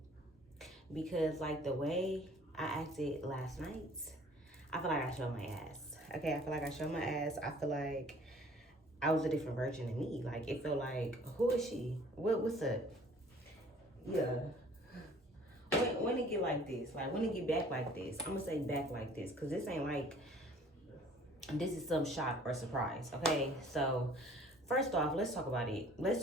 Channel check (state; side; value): normal; both; correlation 0.53